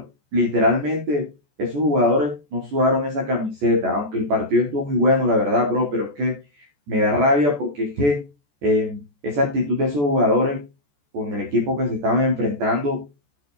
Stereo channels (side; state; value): left; late; 14 ms